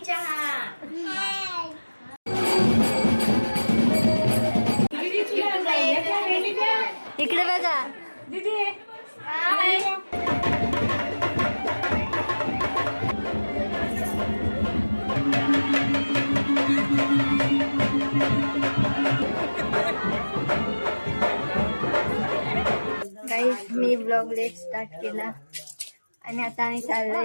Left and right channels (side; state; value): both; inverted; correlation -1.00